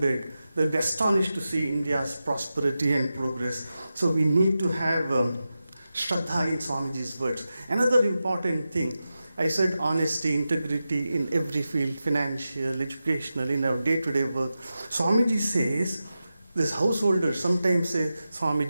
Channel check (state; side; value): inverted; both; correlation -0.93